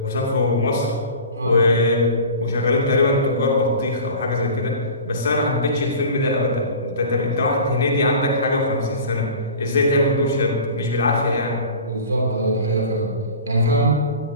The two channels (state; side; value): inverted; both; correlation -0.39